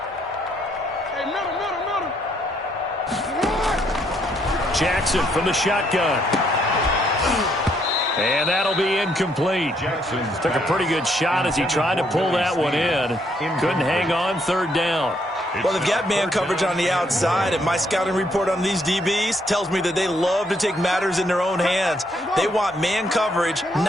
Jackson from the shotgun. And that'll be incomplete. Jackson took a pretty good shot as he tried to pull that one in. Couldn't hang on 3rd down. Well, they've got man coverage on the outside, and my scouting report on these DBs tells me that they love to take matters in their own hands. They want man coverage,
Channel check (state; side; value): normal; both; correlation 0.72